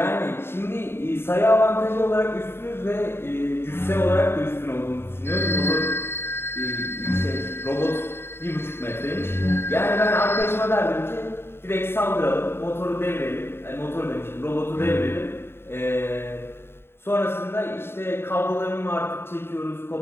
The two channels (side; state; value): right; late; 0.11 ms